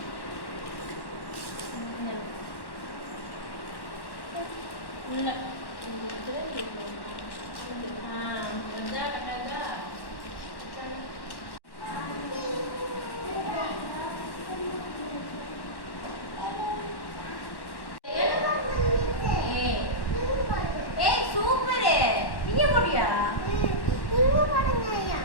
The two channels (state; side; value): late; right; 1.1 ms